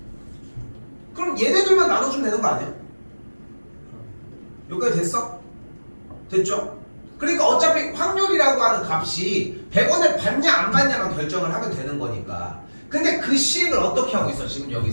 그럼 얘네들만 나눠주면 되는 거 아니야? 여기까지 됐어? 됐죠? 그러니까 어차피 확률이라고 하는 값이 100원을 받냐 안 받냐만 결정을 하면 되는 거니까. 근데 그 시행을 어떻게 하고 있어 지금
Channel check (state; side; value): inverted; both; correlation -1.00